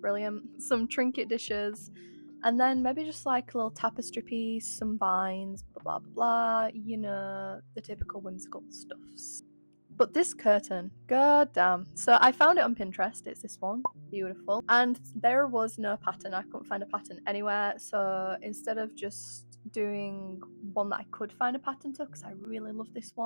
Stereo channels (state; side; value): inverted; both; correlation -1.00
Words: brilliant, some trinket dishes, and then maybe just like a little tapestry piece, some vines, blah blah blah blah, you know, the typical whimsical stuffs. But this curtain, goddamn. So I found it on Pinterest, it's this one, beautiful. And there was no pattern, I couldn't find a pattern anywhere. So instead of just doing one that I could find a pattern to, because I really love this